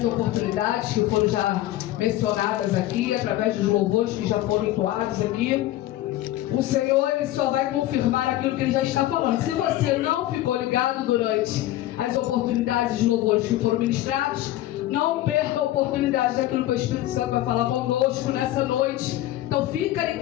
oportunidades que foram já mencionadas aqui, através dos louvores que já foram entoados aqui. O Senhor, Ele só vai confirmar aquilo que Ele já está falando. Se você não ficou ligado durante as oportunidades de louvores que foram ministrados, não perca a oportunidade daquilo que o Espírito Santo vai falar conosco nessa noite. Então fica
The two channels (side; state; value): right; quieter; 14.8 dB